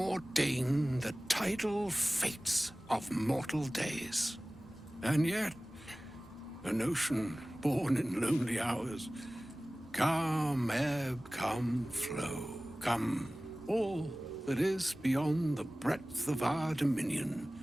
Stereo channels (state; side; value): normal; both; correlation 0.98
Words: the tidal fates of mortal days. And yet, an ocean born in lonely hours, come ebb, come flow, come all that is beyond the breadth of our dominion.